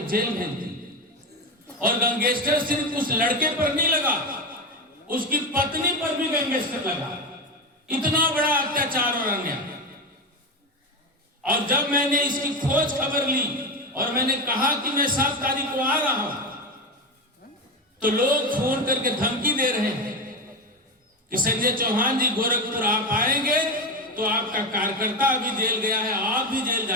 जेल भेजती है। और गैंगस्टर सिर्फ उस लड़के पर नहीं लगा, उसकी पत्नी पर भी गैंगस्टर लगा। इतना बड़ा अत्याचार और अन्याय। और जब मैंने इसकी खोज खबर ली और मैंने कहा कि मैं 7 तारीख को आ रहा हूं तो लोग फोन करके धमकी दे रहे हैं कि संजय चौहान जी गोरखपुर आप आएंगे तो आपका कार्यकर्ता अभी जेल गया है, आप भी जेल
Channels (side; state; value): both; normal; correlation 0.17